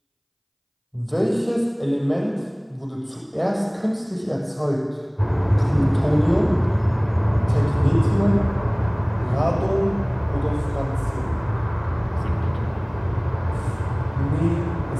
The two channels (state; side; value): identical; both; correlation 1.00